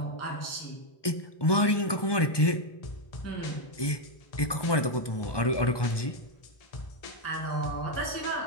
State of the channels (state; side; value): late; right; 1.2 ms